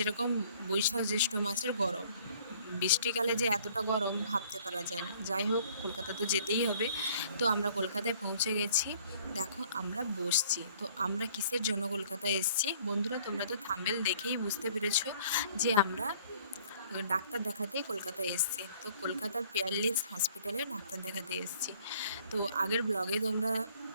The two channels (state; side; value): inverted; both; correlation -0.57